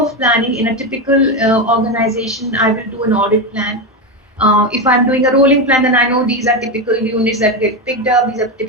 planning, in a typical organization, I will do an audit plan. If I'm doing a rolling plan, then I know these are typical units that get picked up, these are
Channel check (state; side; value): normal; both; correlation 0.13